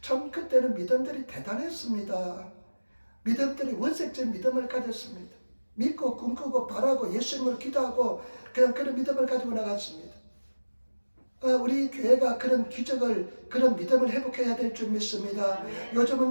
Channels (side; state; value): both; inverted; correlation -1.00